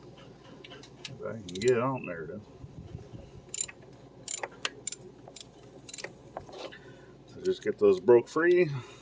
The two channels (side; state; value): both; identical; correlation 1.00